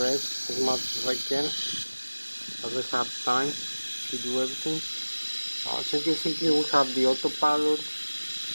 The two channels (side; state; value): both; inverted; correlation -1.00